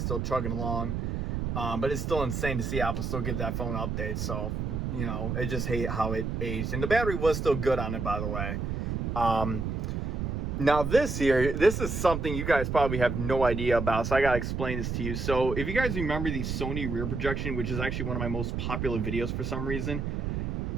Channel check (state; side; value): noise; right; rumble, 2 dB below the sound